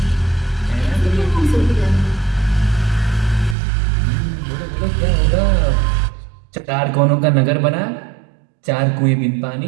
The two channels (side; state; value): left; drops out; at 3.6 s